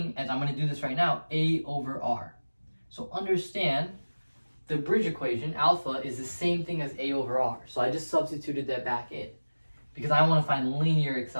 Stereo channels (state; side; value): inverted; both; correlation -1.00